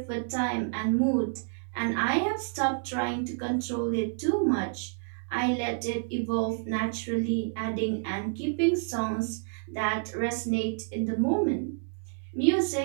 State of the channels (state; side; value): silent; left; digital silence